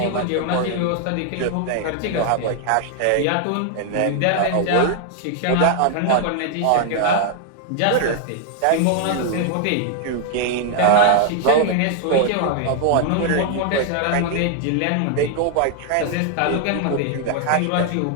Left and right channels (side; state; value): both; different; correlation 0.00